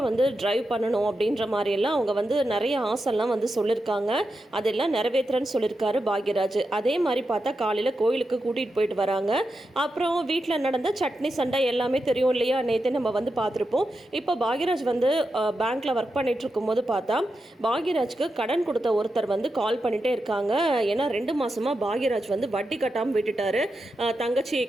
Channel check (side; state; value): both; normal; correlation 0.88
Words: ட்ரைவ் பண்ணணும் அப்படின்ற மாதிரியெல்லாம் அவங்க நிறைய ஆசைலாம் சொல்லியிருக்காங்க. அதெல்லாம் நிறைவேற்றுறேன்னு சொல்லியிருக்காரு பாக்யராஜ். அதே மாதிரி பார்த்தா காலையில் கோயிலுக்கு கூட்டிகிட்டு போயிட்டு வராங்க. அப்புறம் வீட்டில் நடந்த சட்னி சண்டை எல்லாமே தெரியும் இல்லையா? நேற்று நம்ம பார்த்துருப்போம். இப்போ பாக்யராஜ் பேங்க்கில் ஒர்க் பண்ணிட்டு இருக்கும்போது பார்த்தா பாக்யராஜ்க்கு கடன் கொடுத்த ஒருத்தர் கால் பண்ணிகிட்டே இருக்காங்க. ஏன்னா 2 மாதமாக பாக்யராஜ் வட்டி கட்டாமல் விட்டுட்டாரு. தங்கச்சி